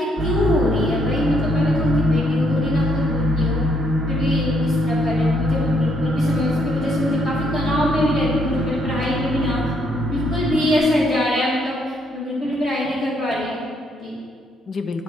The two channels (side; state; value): both; normal; correlation 0.71